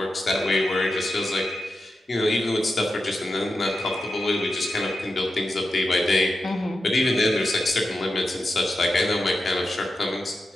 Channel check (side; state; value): both; normal; correlation 0.90